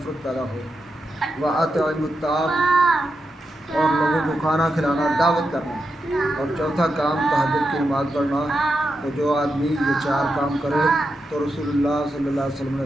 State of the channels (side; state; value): both; normal; correlation 0.87